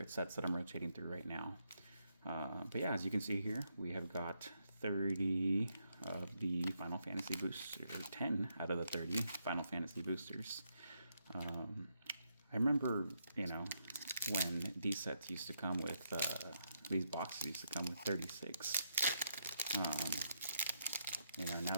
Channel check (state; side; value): inverted; both; correlation -0.78